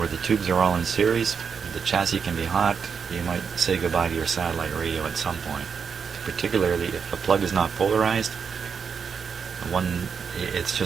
the tubes are all in series, the chassis can be hot, you might say goodbye to your satellite radio at some point. Particularly if the plug is not polarized, it's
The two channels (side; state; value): left; quieter; 6.3 dB